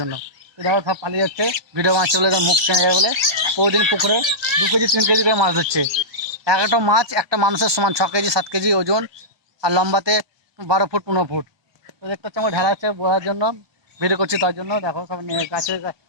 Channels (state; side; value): late; left; 1.2 ms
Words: জন্য। তো দেখো সব পালিয়ে যাচ্ছে, ভিডিও মাছ চলে মুখ চেনে যায় বলে। প্রতিদিন পুকুরে 2 কেজি 3 কেজি করে মাছ ধরছে। এক একটা মাছ একটা মানুষের সমান, 6 কেজি 7 কেজি ওজন, আর লম্বাতে 12 ফুট 15 ফুট। তো দেখতে হচ্ছে আমার ঢালা আছে বলার জন্য, ভিডিও করছি তার জন্য। দেখো সব গাছে